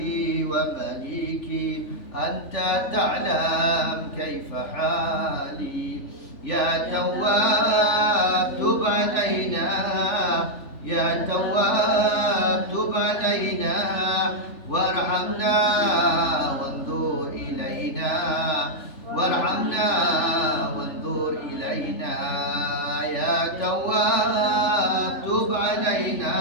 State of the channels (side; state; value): right; late; 3.4 ms